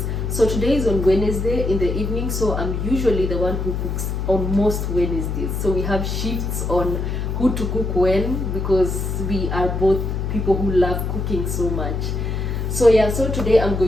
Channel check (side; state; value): left; noise; hum, 2 dB below the sound